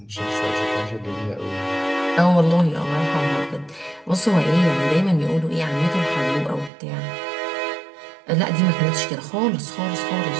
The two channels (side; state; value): left; drops out; at 6.7 s